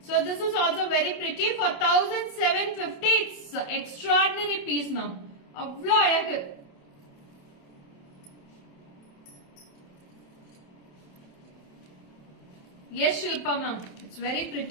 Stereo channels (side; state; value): right; late; 28 ms